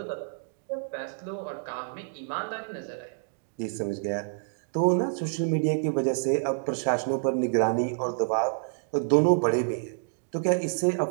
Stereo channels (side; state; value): left; silent; digital silence